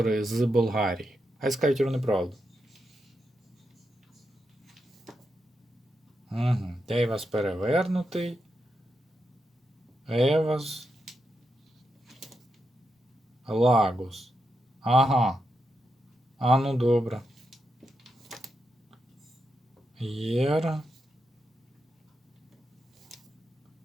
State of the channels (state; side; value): normal; both; correlation 0.85